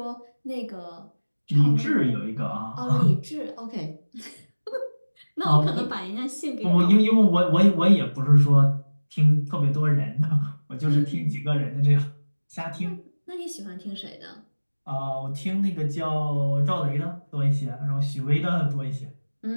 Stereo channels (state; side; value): inverted; both; correlation -1.00